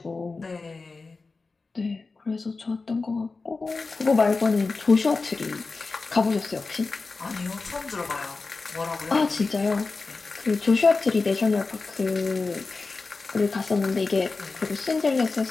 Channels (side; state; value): right; quieter; 4.0 dB